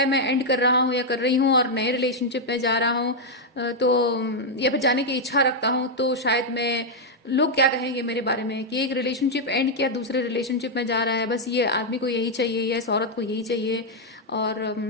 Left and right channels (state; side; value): normal; both; correlation -0.01